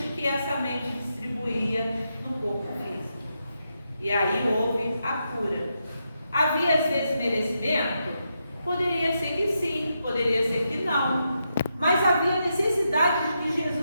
que essa mente distribuía no corpo físico. E aí houve a cura. Havia esse desmerecimento? Poderia ser que sim, poderia ser que não. Mas havia necessidade de que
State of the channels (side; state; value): both; inverted; correlation -0.84